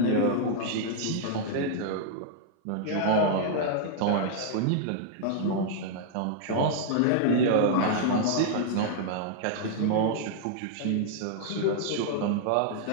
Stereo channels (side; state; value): both; different; correlation -0.01